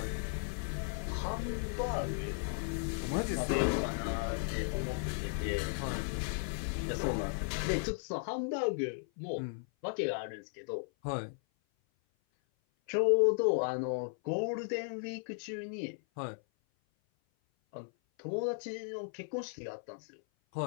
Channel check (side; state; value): right; silent; 54 dB below the other